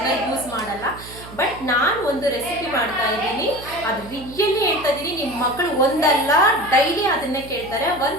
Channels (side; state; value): right; noise; hum, 16 dB below the sound